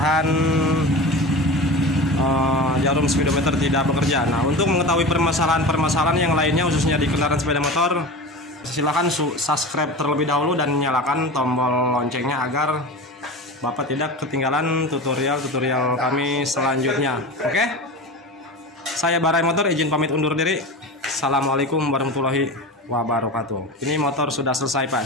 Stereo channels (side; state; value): both; normal; correlation 0.29